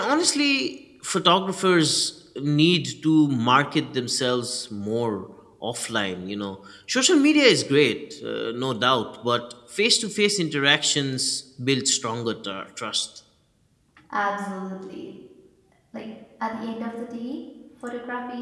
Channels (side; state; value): both; identical; correlation 1.00